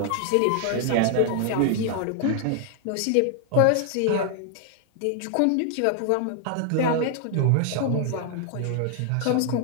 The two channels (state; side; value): different; both; correlation 0.00